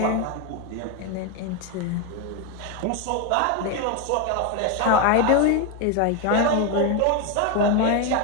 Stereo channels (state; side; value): different; both; correlation 0.02